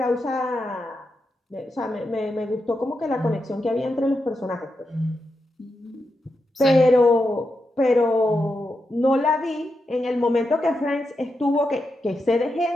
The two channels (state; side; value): normal; both; correlation 0.86